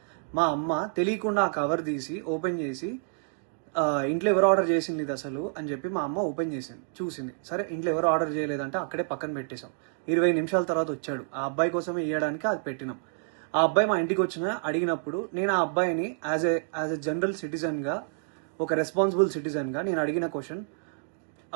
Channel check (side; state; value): left; silent; digital silence